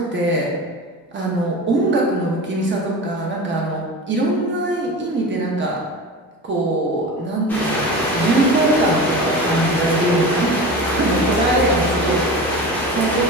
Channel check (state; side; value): normal; both; correlation 0.31